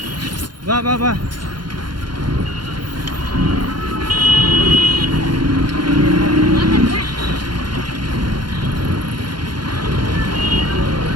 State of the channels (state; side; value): late; left; 0.71 ms